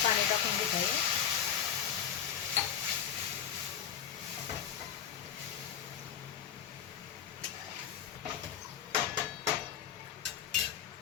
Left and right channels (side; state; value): right; quieter; 8.9 dB